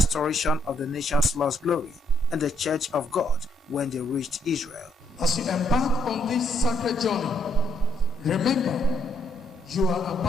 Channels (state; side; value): normal; both; correlation 0.72